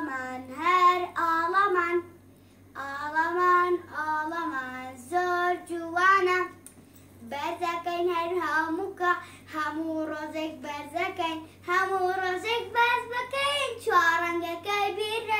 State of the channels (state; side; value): identical; both; correlation 1.00